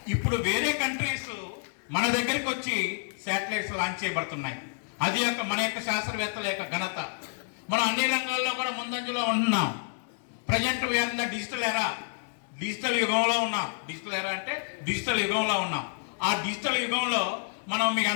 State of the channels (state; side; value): silent; right; 59 dB below the other